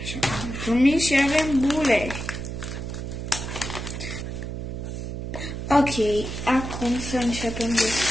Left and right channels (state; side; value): noise; right; hum, 6 dB below the sound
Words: Așa cum am promis, și avem bule. Ok, acum să începem